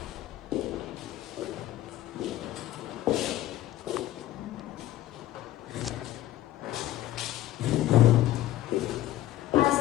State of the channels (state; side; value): quieter; right; 14.3 dB